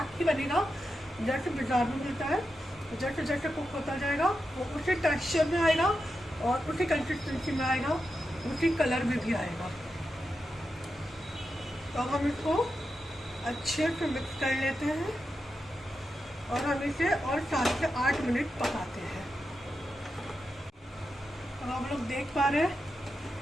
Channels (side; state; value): both; normal; correlation 0.88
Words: ही बनेगा जैसे बाजार में मिलता है। जैसे जैसे कुक होता जाएगा वो उसी टेक्सचर में आएगा और उसी कंसिस्टेंसी में आएगा, उसी कलर में भी आएगा। तो हम इसको अच्छे से मिक्स कर लेते हैं और हम इसे और 7 से 8 मिनट पकाते हैं। तो आप लोग देख पा रहे हैं